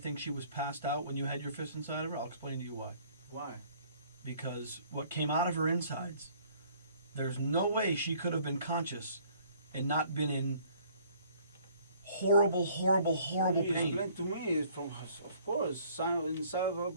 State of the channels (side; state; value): both; inverted; correlation -0.58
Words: she was passed out when you had your fist inside of her? I'll explain to you why. Why? Because what came out of her insides, there's no way she could have been conscious and not been in horrible, horrible, horrible You pain. explain to me, it's from, of course, inside of her